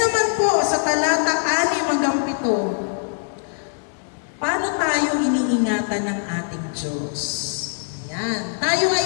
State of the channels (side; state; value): right; silent; 61 dB below the other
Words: po, sa talata 6-7, paano tayo iniingatan ng ating Diyos? Ayan. Tayo